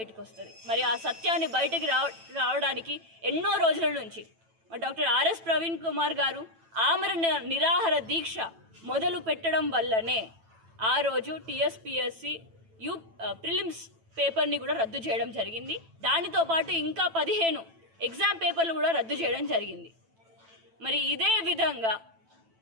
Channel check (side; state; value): left; late; 9.0 ms